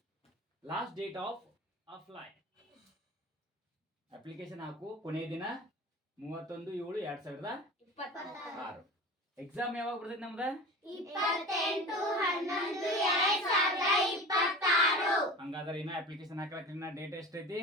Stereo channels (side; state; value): both; normal; correlation 0.35